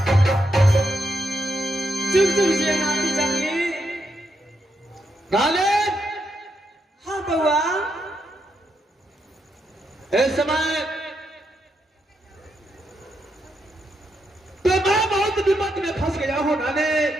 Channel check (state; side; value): normal; both; correlation 0.81